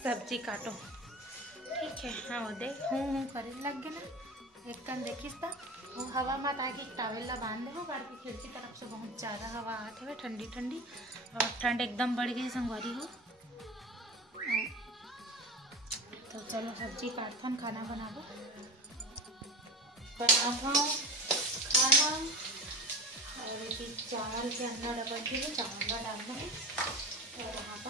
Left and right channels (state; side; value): normal; both; correlation 0.29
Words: सब्जी काटो ठीक है। हाँ वो देख हूँ करे लग गए ना। एक कन देखिस ता वो हवा मत आके टावल ला बांध दे बाहर की खिड़की तरफ से बहुत ज़्यादा हवा आते हुए ठंडी ठंडी, और ठंड एकदम बढ़ गई संगवारी हो। तो चलो सब्जी काटथन, खाना बनाबो खाना। और ये चावल के अंदर डबल के चावल डालना है। और यहाँ